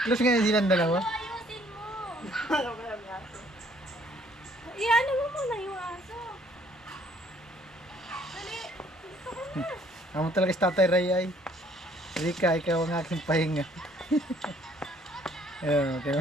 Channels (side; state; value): both; normal; correlation 0.61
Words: Close ngayon silang dalawa. Ayusin mo. Iyan mo muna yung aso. Dali. Gusto ko na. Amo talaga si Tatay Ray ay. Rika, ikaw ang aking pahinga. Ayun, okay.